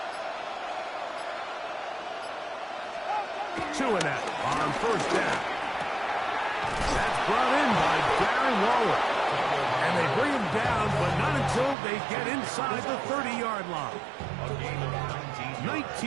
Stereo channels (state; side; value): drops out; left; at 11.8 s